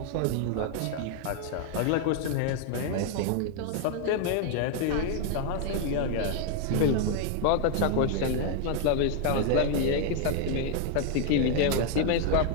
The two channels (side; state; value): both; different; correlation 0.00